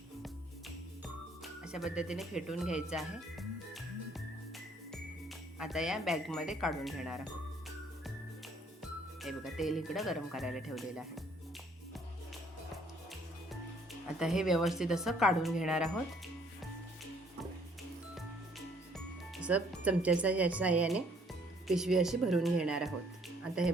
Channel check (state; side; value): normal; both; correlation 0.63